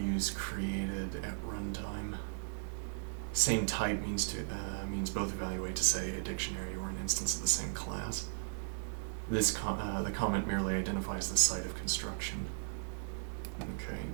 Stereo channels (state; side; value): silent; left; digital silence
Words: created at runtime. Same type means both evaluate to say a dictionary or an instance of the same class. The comment merely identifies the site of construction. Okay,